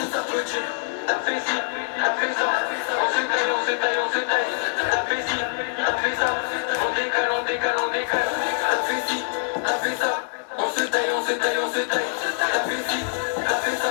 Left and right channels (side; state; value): right; silent; 61 dB below the other